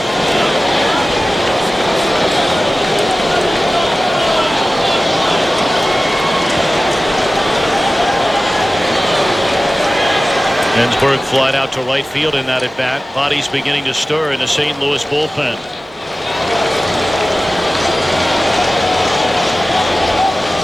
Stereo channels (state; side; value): normal; both; correlation 0.96